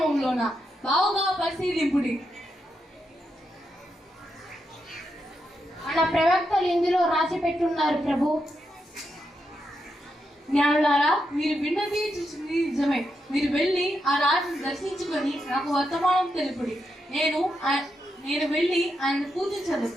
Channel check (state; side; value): normal; both; correlation 0.84